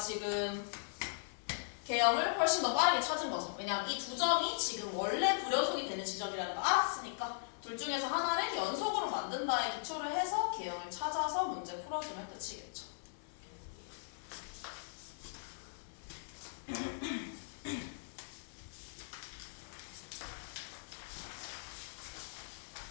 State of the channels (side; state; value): right; silent; 52 dB below the other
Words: 개형을 훨씬 더 빠르게 찾은 거죠. 왜냐하면 이 두 점이 지금 원래 불연속이 되는 지점이라는 걸 알았으니까 둘 중에서 하나를 연속으로 만든 바에 기초를 해서 개형을 찾아서 문제 풀어주면 끝이겠죠.